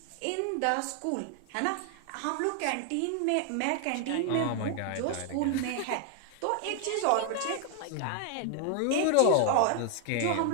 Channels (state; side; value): different; both; correlation 0.00